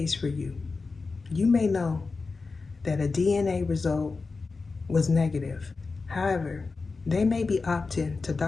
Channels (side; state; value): right; quieter; 4.2 dB